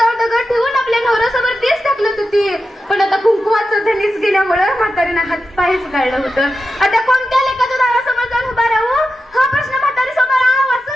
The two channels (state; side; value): normal; both; correlation 0.90